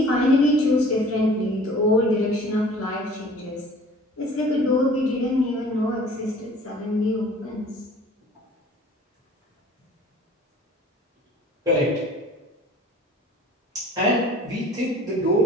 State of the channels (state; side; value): normal; both; correlation 0.49